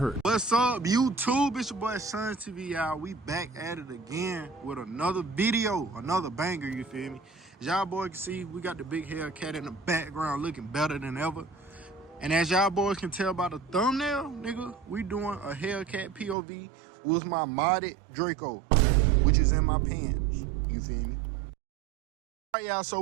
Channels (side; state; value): left; drops out; at 16.4 s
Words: What's up, YouTube? It's your boy Sun TV, y'all. We back at it again with another video, another banger, you feel me? As y'all boys can see, we got the big Hellcat in the background looking better than ever. And as y'all boys can tell by the thumbnail, nigga, we doing a Hellcat POV with my modded Draco, which is in my pants, you feel me? All right, y'all, so